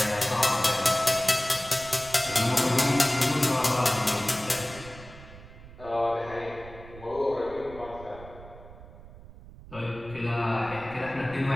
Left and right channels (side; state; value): right; noise; rumble, 17 dB below the sound